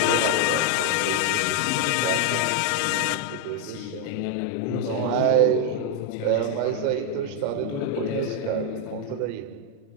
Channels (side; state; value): both; different; correlation 0.01